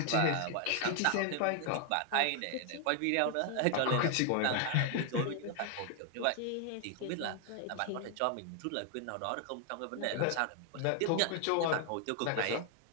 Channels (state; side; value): different; both; correlation 0.00